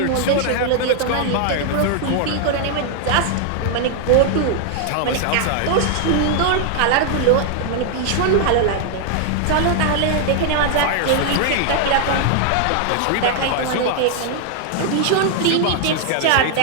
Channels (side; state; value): both; different; correlation 0.00